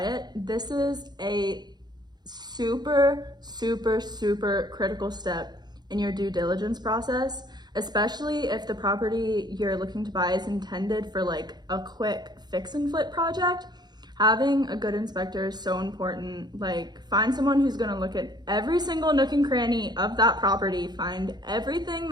it. This is a super, super, super critical step in your due diligence process, especially if the property you're looking to buy is intended for like a quick fix and flip project. Having a good inspector is so important. Like, find someone who's gonna look at every single nook and cranny of that property, find everything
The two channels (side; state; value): left; late; 0.20 ms